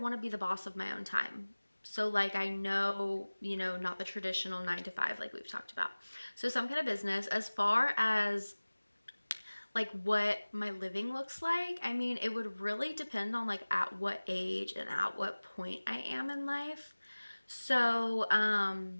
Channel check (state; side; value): inverted; both; correlation -1.00